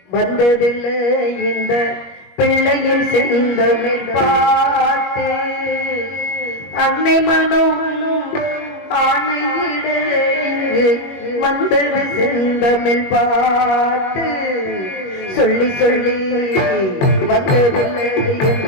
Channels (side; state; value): right; late; 21 ms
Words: வந்ததில்லை இந்த பிள்ளையின் செந்தமிழ் பாட்டு, அன்னை மனம் ஆணையிட வந்தது செந்தமிழ் பாட்டு. சொல்லி சொல்லி வந்ததில்லை